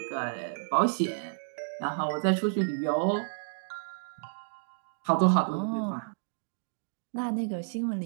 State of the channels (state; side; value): silent; left; digital silence